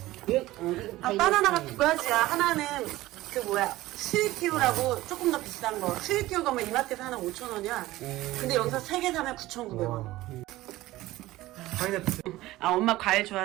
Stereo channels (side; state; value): left; quieter; 17.2 dB